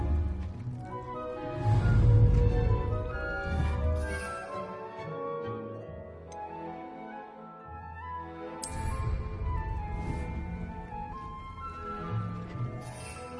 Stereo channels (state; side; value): identical; both; correlation 1.00